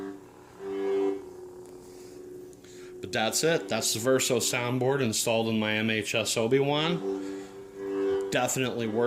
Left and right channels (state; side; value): identical; both; correlation 1.00